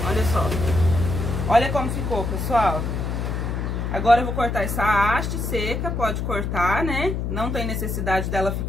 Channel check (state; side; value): noise; left; hum, 2 dB below the sound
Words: Olha só. Olha como ficou, pessoal. Agora eu vou cortar essa haste seca. Pode cortar, né? Não tem necessidade dela